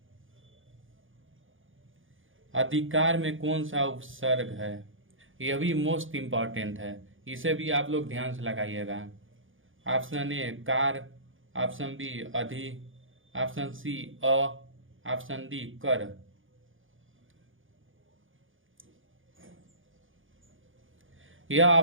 अधिकार में कौन सा उपसर्ग है? यह भी मोस्ट इम्पॉर्टेंट है, इसे भी आप लोग ध्यान से लगाइएगा। ऑप्शन ए कार, ऑप्शन बी अधि, ऑप्शन सी अ, ऑप्शन डी कर। यह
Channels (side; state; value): left; late; 0.58 ms